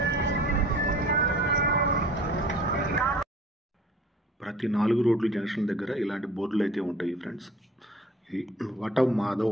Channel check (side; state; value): both; normal; correlation 0.47